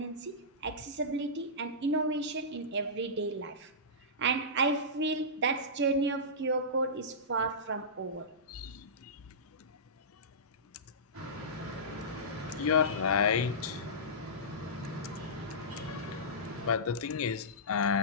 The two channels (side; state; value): both; normal; correlation -0.18